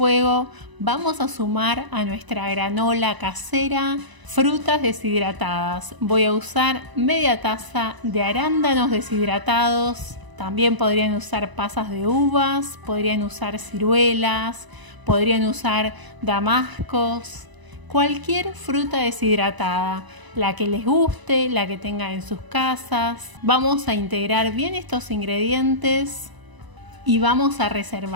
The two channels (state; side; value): late; left; 1.0 ms